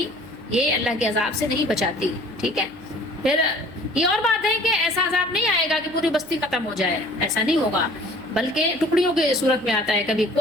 یہ اللہ کے عذاب سے نہیں بچاتی، ٹھیک ہے۔ پھر یہ اور بات ہے کہ ایسا عذاب نہیں آئے گا کہ پوری بستی ختم ہو جائے، ایسا نہیں ہوگا، بلکہ ٹکڑیوں کی صورت میں آتا ہے۔ کبھی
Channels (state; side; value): noise; right; hum, 22 dB below the sound